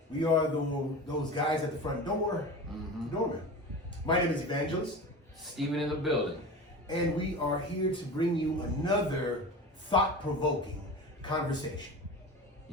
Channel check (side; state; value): both; normal; correlation 0.32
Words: We are those guys at the front door, The Doorman. My name is Evangelist, Steven in the building. and we are here to bring you another thought-provoking conversation.